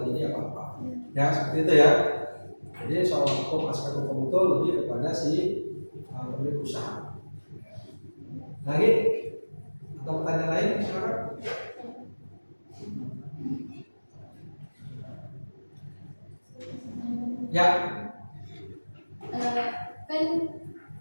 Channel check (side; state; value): both; inverted; correlation -1.00